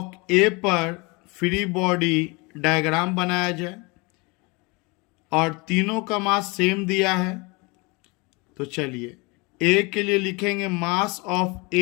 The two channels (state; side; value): quieter; right; 27.5 dB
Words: ए पर फ्री बॉडी डायग्राम बनाया जाए और तीनों का मास सेम दिया है। तो चलिए ए के लिए लिखेंगे mass of